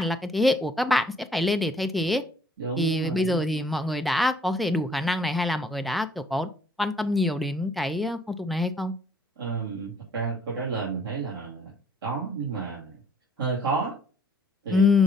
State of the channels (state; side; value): normal; both; correlation 0.63